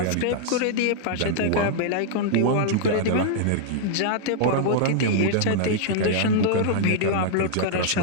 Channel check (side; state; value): both; different; correlation -0.01